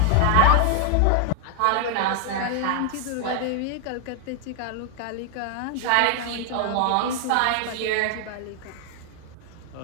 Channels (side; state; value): both; different; correlation 0.00